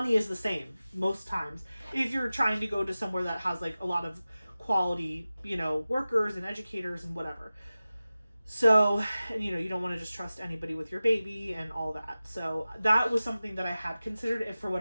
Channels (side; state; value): both; inverted; correlation -0.96